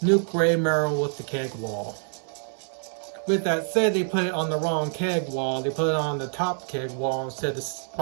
Grey Merrill with the keg wall. With that said, they put it on the wrong keg wall. They put it on the top keg wall instead of the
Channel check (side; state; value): left; silent; 56 dB below the other